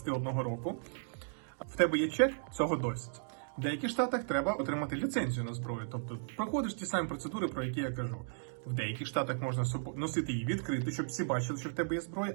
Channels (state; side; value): silent; left; digital silence